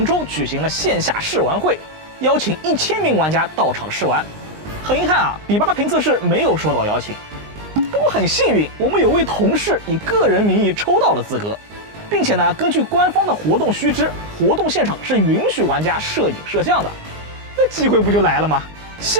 州举行了线下试玩会，邀请1000名玩家到场试玩。很遗憾啊，比巴评测室没有收到邀请。不过很幸运，我们有位同事以个人名义抽到了资格，并且呢，根据官方的活动须知，活动现场是允许玩家摄影摄像的。那机会不就来了吗？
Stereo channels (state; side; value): late; left; 19 ms